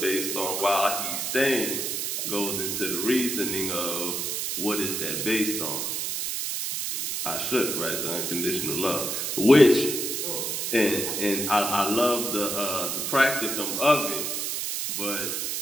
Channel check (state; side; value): noise; right; hiss, 2 dB below the sound